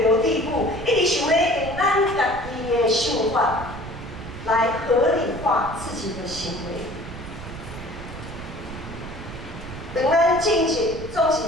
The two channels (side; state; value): right; noise; rumble, 11 dB below the sound